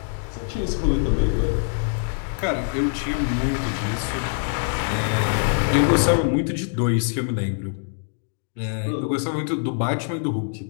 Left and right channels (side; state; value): right; silent; 63 dB below the other